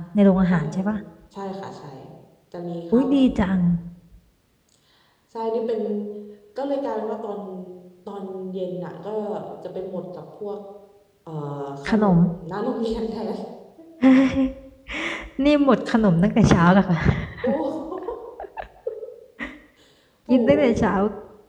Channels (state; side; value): identical; both; correlation 1.00